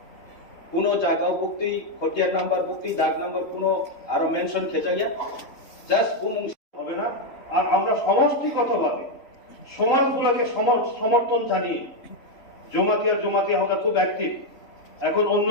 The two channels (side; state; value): right; late; 3.5 ms